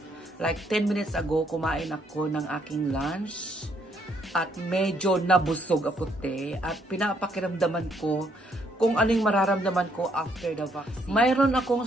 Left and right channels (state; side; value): normal; both; correlation 0.70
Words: Like 10 minutes ago, kumain ako ng aking lunch at medyo nabusog ako at pinapakiramdaman ko kung anong mararamdaman ko after the vaccine. Mayroon akong